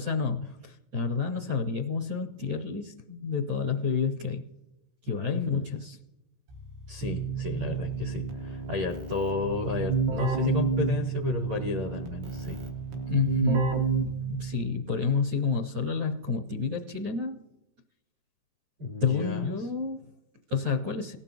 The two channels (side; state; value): left; late; 14 ms